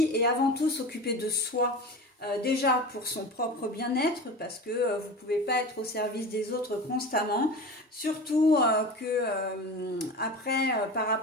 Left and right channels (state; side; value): normal; both; correlation 0.31